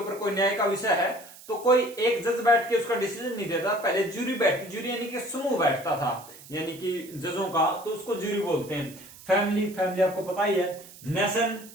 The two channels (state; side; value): noise; right; hiss, 19 dB below the sound